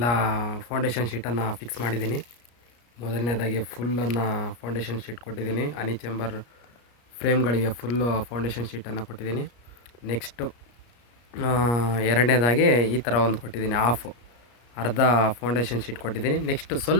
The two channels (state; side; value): late; right; 34 ms